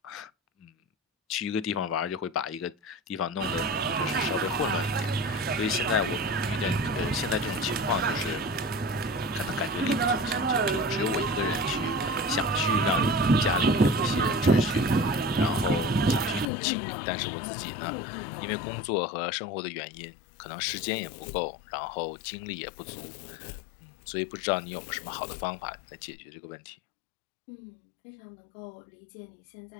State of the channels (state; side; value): drops out; right; at 16.4 s